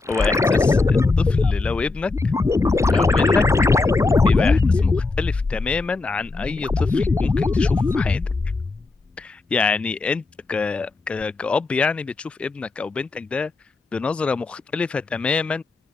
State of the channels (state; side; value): quieter; right; 3.6 dB